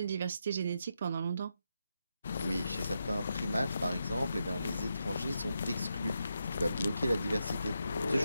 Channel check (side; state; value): both; inverted; correlation -0.85